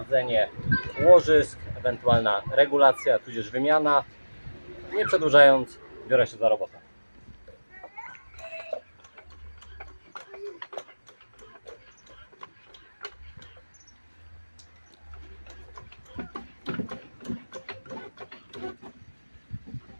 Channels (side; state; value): both; inverted; correlation -1.00